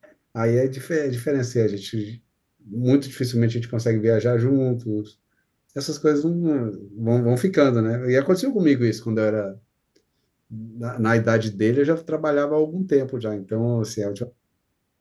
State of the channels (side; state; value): both; identical; correlation 1.00